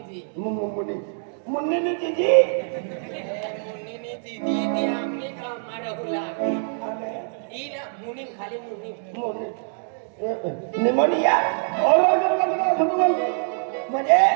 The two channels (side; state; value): left; silent; digital silence